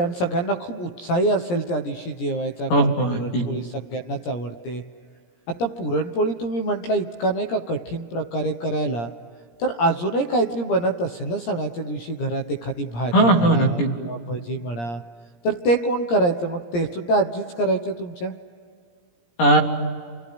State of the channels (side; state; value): right; late; 17 ms